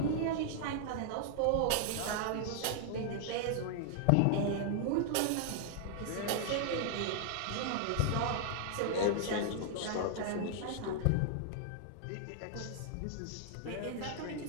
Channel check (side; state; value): both; different; correlation -0.01